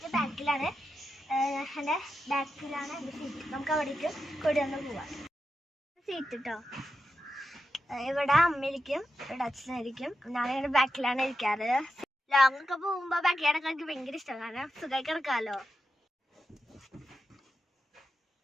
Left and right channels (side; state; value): both; normal; correlation 0.88